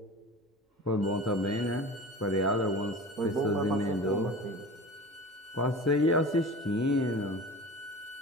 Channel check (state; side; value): normal; both; correlation 0.36